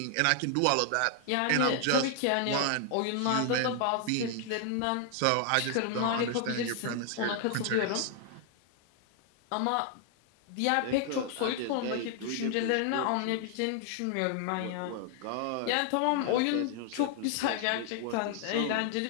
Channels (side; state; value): both; different; correlation 0.00